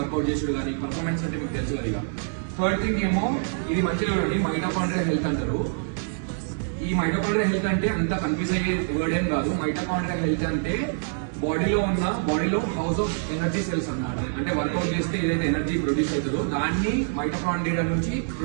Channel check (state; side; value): silent; left; 61 dB below the other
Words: చేసేది కానీ పర్ఫార్మెన్స్ అంటే మీకు తెలుసు కదా. థర్డ్ థింగ్ ఏమో ఇది మంచిగా మైటోకాండ్రియల్ హెల్త్ అంటారు. ఈ మైటోకాండ్రియల్ హెల్త్ అంటే అంత కన్ఫ్యూజ్ అయ్యే వర్డ్ ఏం కాదు. మైటోకాండ్రియల్ హెల్త్ అంటే బాడీలో హౌస్ ఆఫ్ ఎనర్జీ సెల్స్ అన్నమాట. అంటే వర్కౌట్ చేస్తే ఏదైతే ఎనర్జీ ప్రొడ్యూస్ అవుతుందో దాన్ని మైటోకాండ్రియా నుంచి